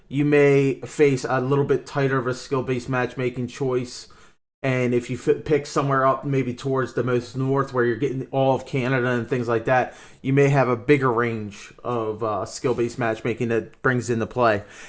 you may face a little bit tighter of a skill-based matchmaking choice. And if you pick somewhere up maybe towards the most north where you're getting all of Canada and things like that, you may have a bigger range of skill-based matchmaking that brings into play.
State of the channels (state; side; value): identical; both; correlation 1.00